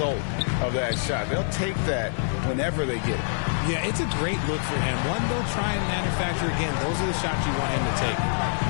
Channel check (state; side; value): silent; right; 61 dB below the other